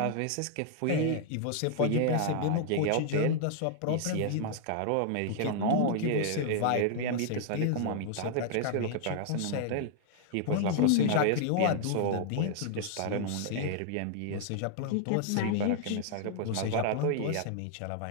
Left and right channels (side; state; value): both; different; correlation -0.01